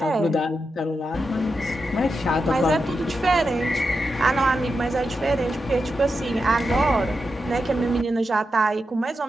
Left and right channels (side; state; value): both; normal; correlation 0.88